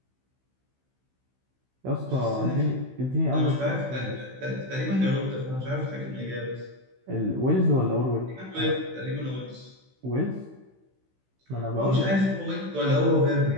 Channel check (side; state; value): left; late; 16 ms